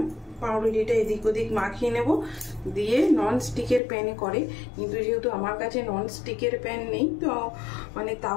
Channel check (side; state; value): right; drops out; at 3.8 s